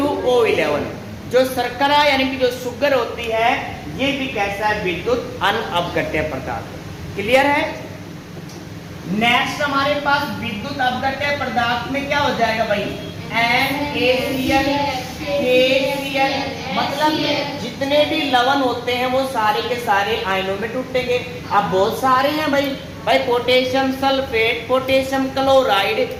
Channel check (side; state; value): both; identical; correlation 1.00